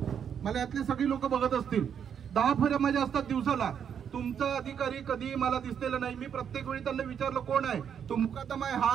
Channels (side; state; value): left; quieter; 8.0 dB